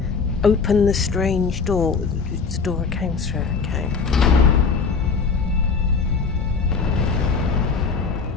open the strange door. It's the door I came through. Okay.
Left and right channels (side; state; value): right; quieter; 5.1 dB